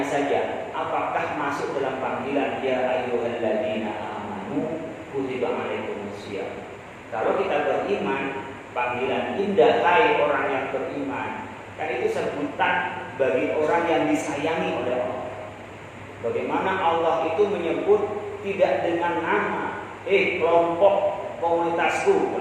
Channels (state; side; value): identical; both; correlation 1.00